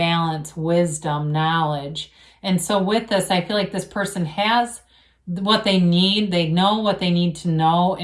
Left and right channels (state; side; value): identical; both; correlation 1.00